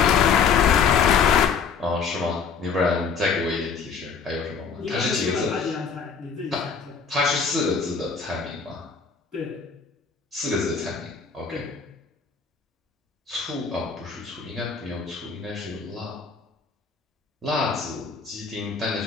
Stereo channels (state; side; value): quieter; right; 5.9 dB